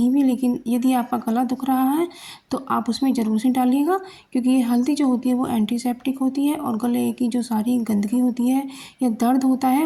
भी, लेकिन यदि आपका गला दुख रहा है तो आप उसमें ज़रूर से डालिएगा क्योंकि ये हल्दी जो होती है वो एंटीसेप्टिक होती है और गले की जो सारी गंदगी होती है या दर्द होता है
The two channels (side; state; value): both; identical; correlation 1.00